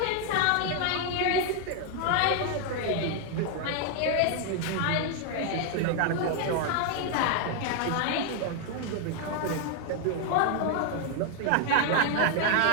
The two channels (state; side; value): different; both; correlation 0.00